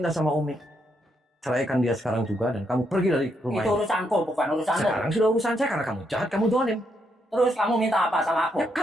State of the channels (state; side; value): normal; both; correlation 0.78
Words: sama Umi, ceraikan dia sekarang juga dan kamu pergi dari rumah Itu ini. urusanku, bukan urusanmu. Sekarang sudah urusan saya karena kamu jahat, kamu dolim. Terus kamu minta apa sama aku? Ya